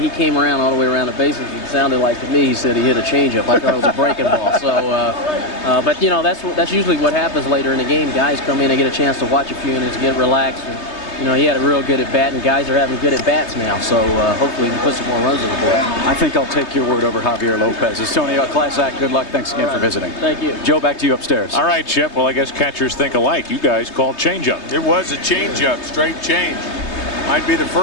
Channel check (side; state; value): right; late; 3.2 ms